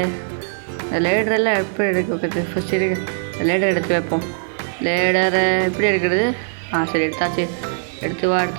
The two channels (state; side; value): silent; left; digital silence